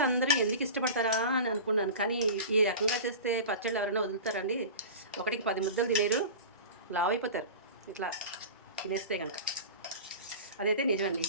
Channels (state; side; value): inverted; both; correlation -0.33